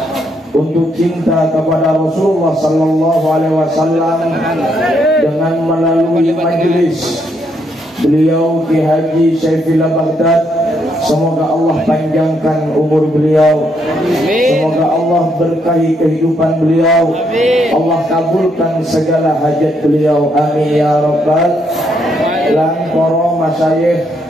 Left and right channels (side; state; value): both; normal; correlation 0.75